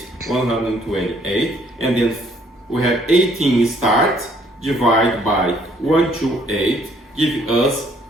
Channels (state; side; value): normal; both; correlation 0.64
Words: and then we have 18 start, divide by 128, give us